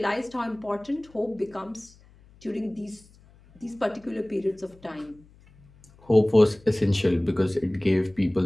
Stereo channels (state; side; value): noise; left; hum, 27 dB below the sound